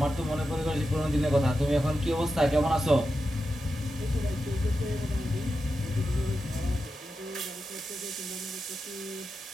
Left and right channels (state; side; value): normal; both; correlation 0.89